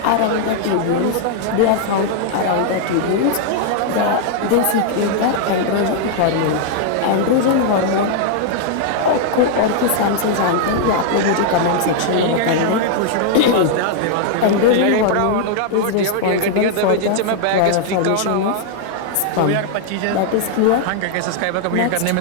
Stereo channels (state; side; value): different; both; correlation -0.01